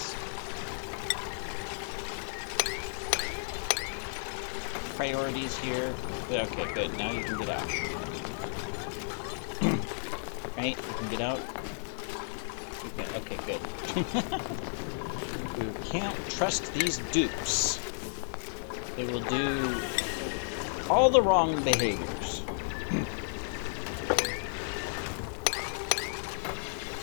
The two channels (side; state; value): right; silent; 56 dB below the other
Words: Priorities here. Okay, good. Now you can get out. Right? You can get out. Okay, good. You can't trust these dupes. They will do all the wrong behaviors.